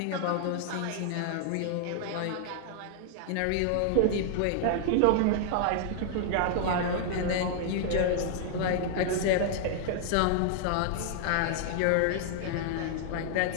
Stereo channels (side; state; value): both; different; correlation 0.00